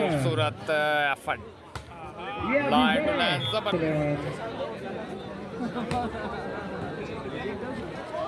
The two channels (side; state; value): both; identical; correlation 1.00